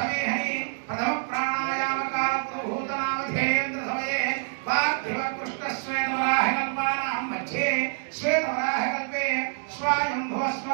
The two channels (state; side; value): silent; left; digital silence